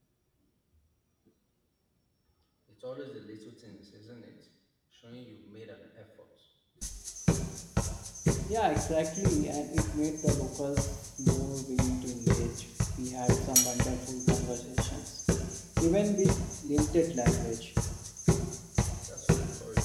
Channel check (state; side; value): identical; both; correlation 1.00